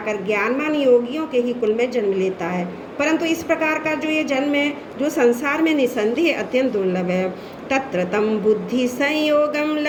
ज्ञानवान योगियों के ही कुल में जन्म लेता है, परंतु इस प्रकार का जो ये जन्म है जो संसार में निसंदेह अत्यंत दुर्लभ है। तत्र तम बुद्धि संयोगम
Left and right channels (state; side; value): identical; both; correlation 1.00